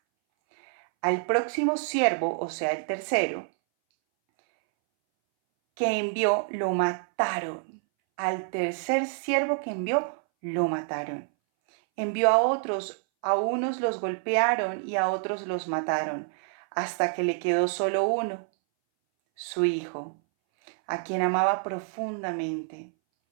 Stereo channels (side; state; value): left; silent; 60 dB below the other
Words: Al próximo siervo, o sea, el tercero, que envió, lo mataron. Al tercer siervo que envió, lo mataron. Envió a unos los golpearon y a otros los mataron, hasta que le quedó solo uno, su hijo, a quien amaba profundamente.